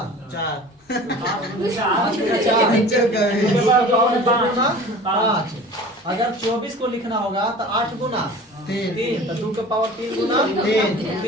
5। अगर 24 को लिखना होगा तो 8 गुना 3, तो 2 के पावर 3 गुना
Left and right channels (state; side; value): normal; both; correlation 0.41